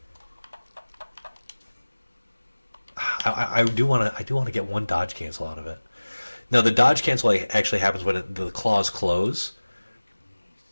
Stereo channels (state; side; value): inverted; both; correlation -1.00